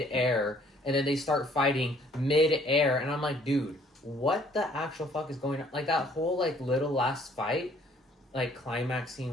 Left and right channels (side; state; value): both; normal; correlation 0.60